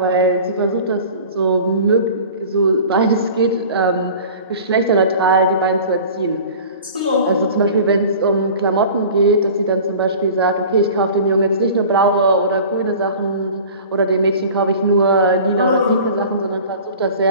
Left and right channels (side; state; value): both; inverted; correlation -0.42